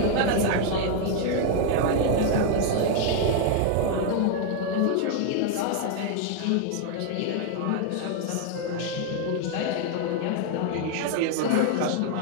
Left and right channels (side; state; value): both; different; correlation 0.00